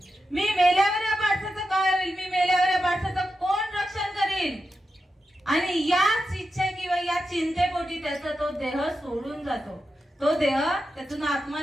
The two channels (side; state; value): both; normal; correlation 0.89